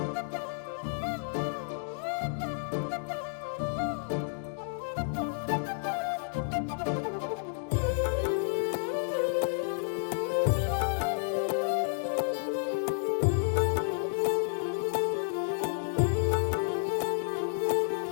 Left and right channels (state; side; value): silent; right; digital silence